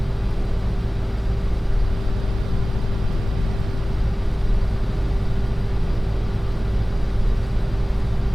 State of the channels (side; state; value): both; normal; correlation 0.98